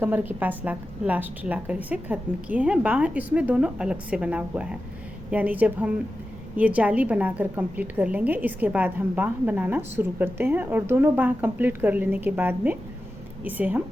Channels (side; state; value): both; normal; correlation 0.92